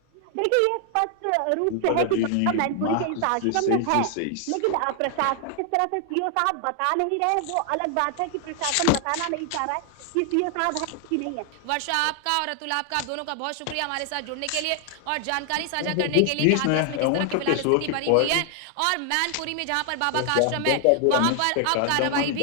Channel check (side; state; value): both; different; correlation 0.00